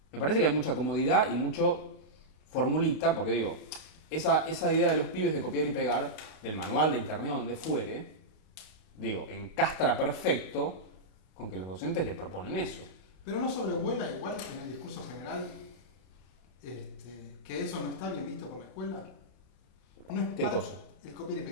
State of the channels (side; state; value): right; late; 32 ms